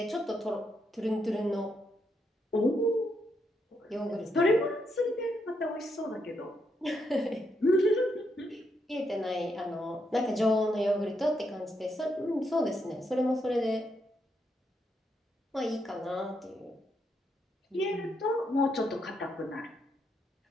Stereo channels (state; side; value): normal; both; correlation 0.79